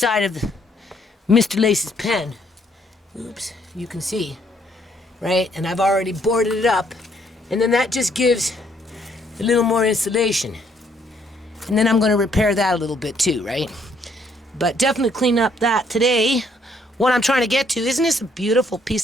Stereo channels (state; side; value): normal; both; correlation 0.68